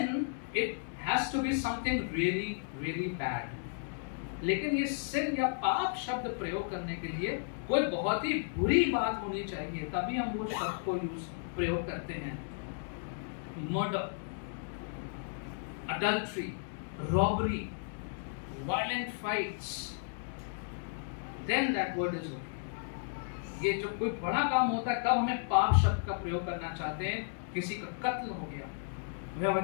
it has to be something really, really bad. लेकिन ये sin या पाप शब्द प्रयोग करने के लिए कोई बहुत ही बुरी बात होनी चाहिए, तभी हम वो शब्द को प्रयोग करते हैं। Murder, adultery, robbery, violent fights, then that word is okay. ये जो कोई बड़ा काम होता है तब हमें पाप शब्द का प्रयोग करना चाहते हैं। किसी का कत्ल हो गया,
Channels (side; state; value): right; silent; digital silence